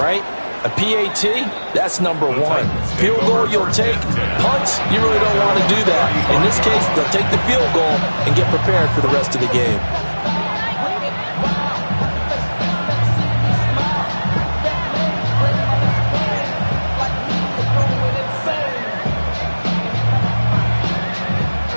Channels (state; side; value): inverted; both; correlation -1.00